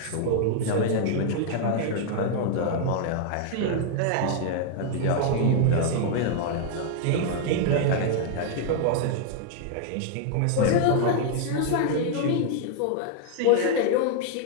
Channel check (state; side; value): different; both; correlation 0.00